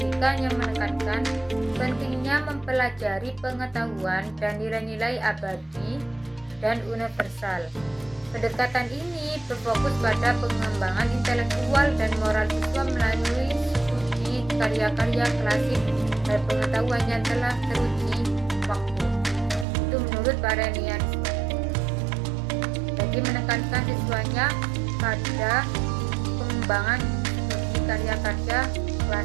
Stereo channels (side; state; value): left; drops out; at 19.7 s